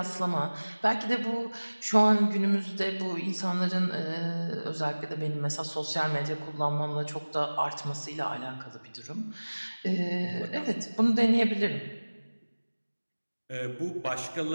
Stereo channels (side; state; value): both; inverted; correlation -1.00